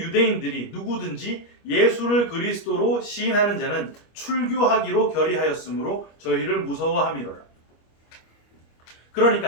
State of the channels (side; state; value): right; late; 25 ms